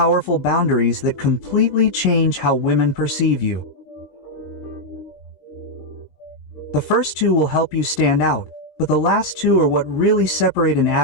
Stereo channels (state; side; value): late; right; 20 ms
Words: boundaries that completely change how women perceive you. The first 2 will help you stand out, but the last 2 are what really separate an